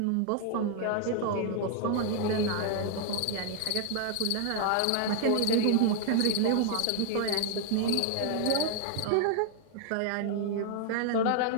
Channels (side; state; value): both; different; correlation 0.00